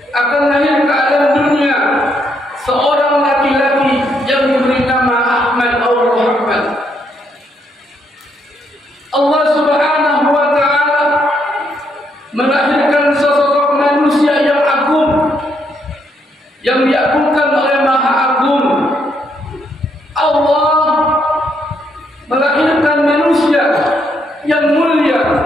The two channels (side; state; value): both; normal; correlation 0.75